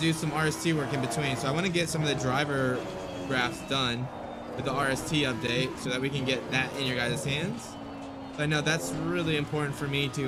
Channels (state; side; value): identical; both; correlation 1.00